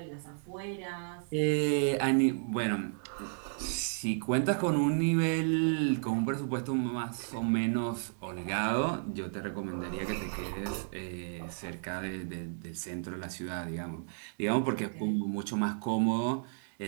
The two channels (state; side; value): silent; left; 56 dB below the other